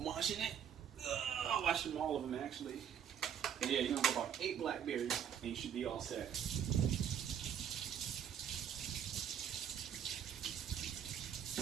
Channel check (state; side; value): quieter; left; 8.8 dB